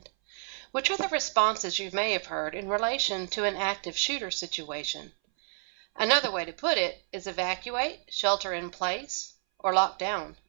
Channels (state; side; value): silent; left; 58 dB below the other